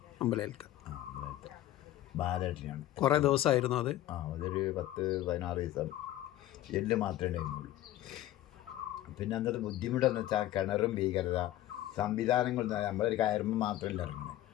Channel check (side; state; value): right; quieter; 14.1 dB